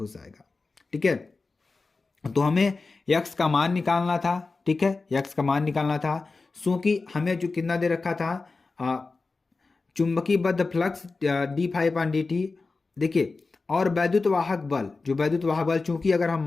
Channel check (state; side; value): quieter; right; 3.9 dB